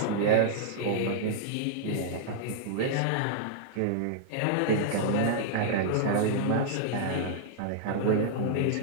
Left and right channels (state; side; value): different; both; correlation -0.01